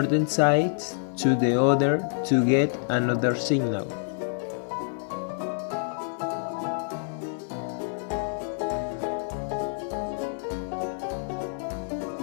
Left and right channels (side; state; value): right; silent; 60 dB below the other